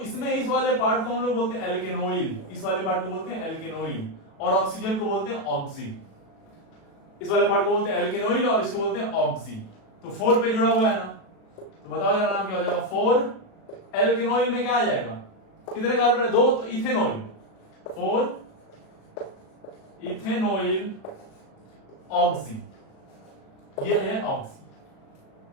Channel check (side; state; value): right; late; 37 ms